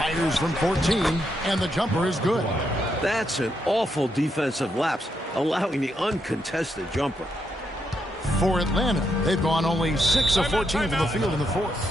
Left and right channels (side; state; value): both; normal; correlation 0.80